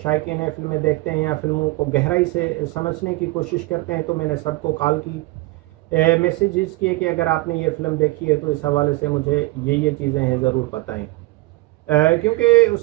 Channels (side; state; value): left; quieter; 21.0 dB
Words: हैं, फिल्में देखते हैं या फिल्मों को गहराई से समझने की कोशिश करते हैं, तो मैंने सबको कॉल की, मैसेजेस किए कि अगर आपने ये फिल्म देखी है तो इस हवाले से मुझे ये चीज़ें हैं ज़रूर बताएं। क्योंकि